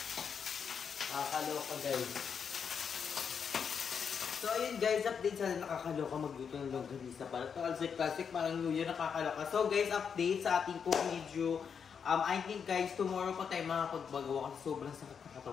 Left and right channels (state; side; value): quieter; right; 6.8 dB